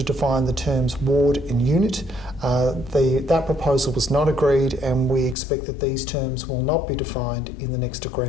define the terms ward and unit. That proposal was not agreed, and we expect that these terms will not be defined in the next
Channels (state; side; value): drops out; right; at 5.4 s